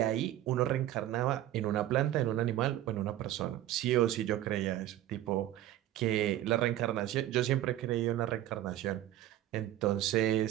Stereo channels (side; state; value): left; quieter; 13.5 dB